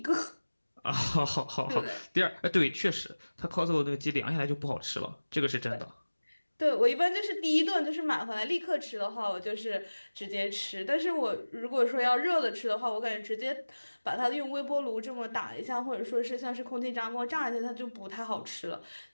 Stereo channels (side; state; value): both; inverted; correlation -1.00